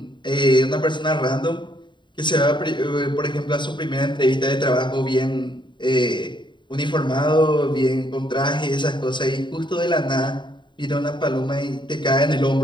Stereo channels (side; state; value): right; late; 0.23 ms